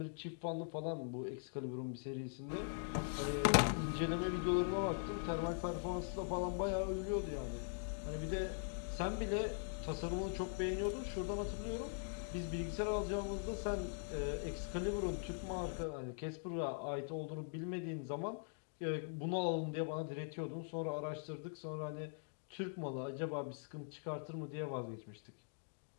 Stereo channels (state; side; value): silent; right; digital silence